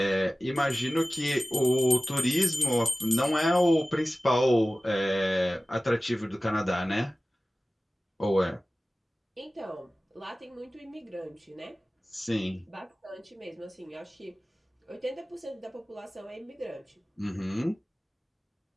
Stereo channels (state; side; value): normal; both; correlation 0.97